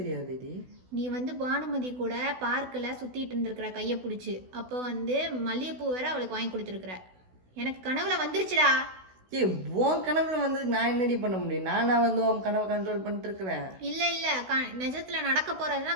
நீ வந்து பானுமதி கூட பார்க்கில் சுத்திட்டு இருந்திருக்கிற கையை பிடிச்சி, அப்போ வந்து மல்லிகைப்பூ வேற அவளுக்கு வாங்கி கொடுத்துருக்குற. எனக்கு கனவுல வந்துருச்சுடா. உன் கனவுல வந்து நான் என்னடி பண்ண முடியும்? நானா வந்து உன் கனவை கண்ட்ரோல் பண்ணிட்டு இருக்கிறேன். இல்ல நிஜத்துல நடக்க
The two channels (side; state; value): left; late; 16 ms